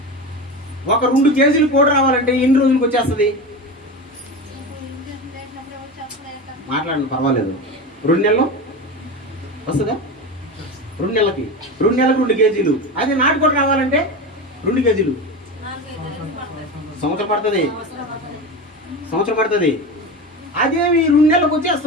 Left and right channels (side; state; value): both; normal; correlation 0.24